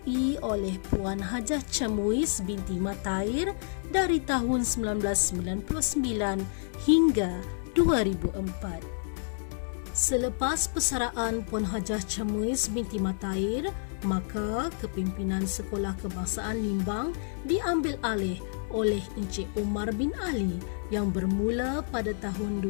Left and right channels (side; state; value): right; silent; digital silence